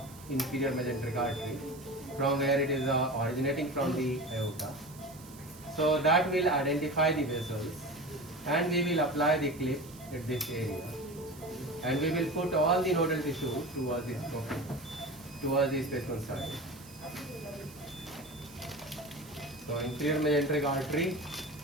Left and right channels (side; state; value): right; noise; hiss, 20 dB below the sound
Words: inferior mesenteric artery from where it is originating from the aorta. So that will identify the vessels and we will apply the clip at this area and we will put all the nodal tissue towards this specimen side. So inferior mesenteric artery